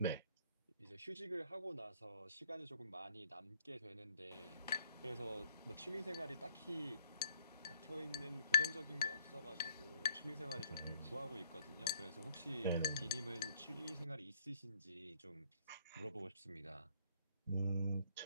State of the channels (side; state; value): both; inverted; correlation -0.66